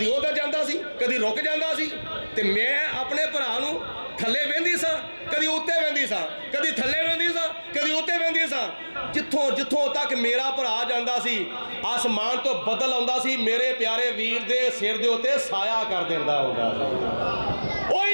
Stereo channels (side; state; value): both; inverted; correlation -1.00